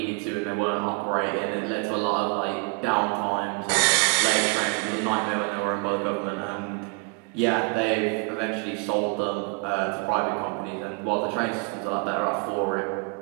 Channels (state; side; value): quieter; left; 34.4 dB